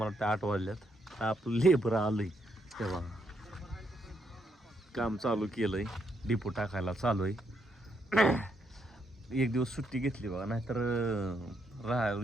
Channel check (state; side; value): normal; both; correlation 0.76